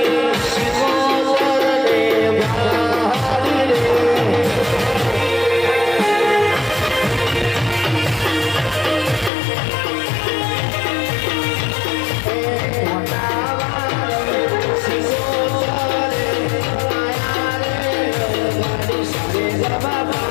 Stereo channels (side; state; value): right; drops out; at 9.3 s